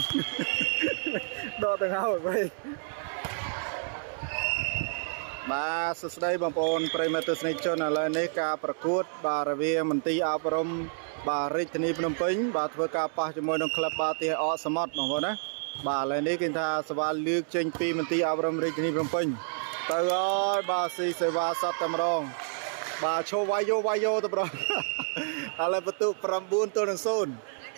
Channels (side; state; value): left; silent; 59 dB below the other